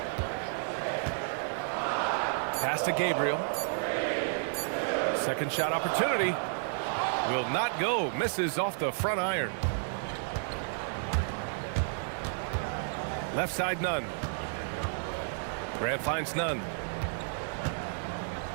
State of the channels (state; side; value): silent; left; 56 dB below the other